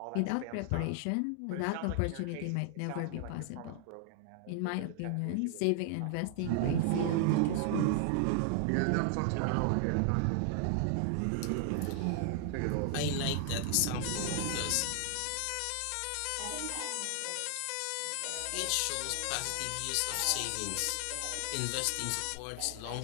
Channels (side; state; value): both; different; correlation 0.00